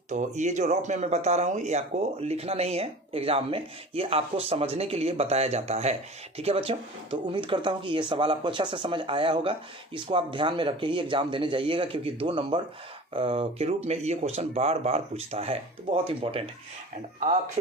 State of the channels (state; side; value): normal; both; correlation 0.39